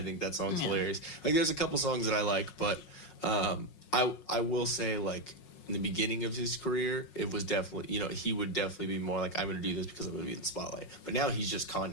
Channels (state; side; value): late; right; 5.5 ms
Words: think that song's hilarious. Like, there's a couple songs that I like, but I will say, like, in the beginning of his career, it was definitely, he would definitely be more like, I'm going to do this because I'm going to be in the spotlight. But now he's just